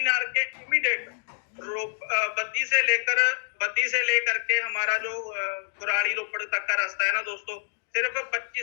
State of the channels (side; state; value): right; silent; digital silence